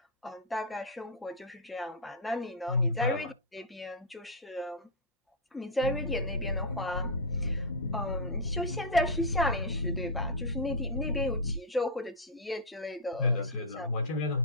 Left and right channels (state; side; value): normal; both; correlation -0.06